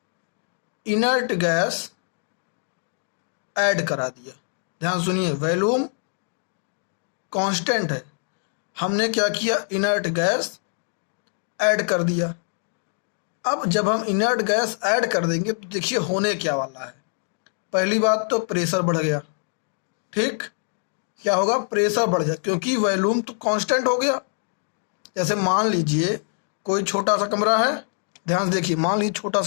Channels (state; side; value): silent; right; 62 dB below the other